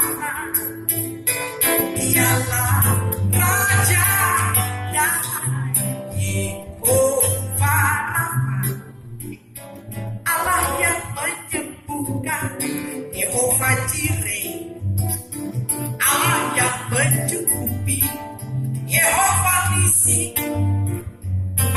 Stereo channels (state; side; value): identical; both; correlation 1.00